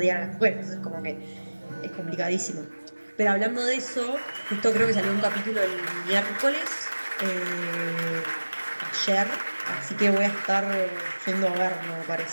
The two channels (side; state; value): both; inverted; correlation -1.00